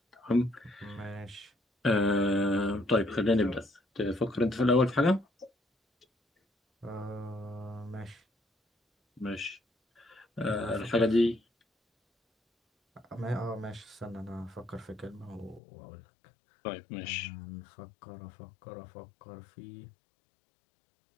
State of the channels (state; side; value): drops out; right; at 15.6 s